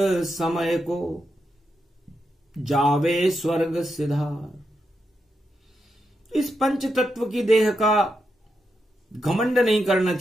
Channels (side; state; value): both; normal; correlation 0.85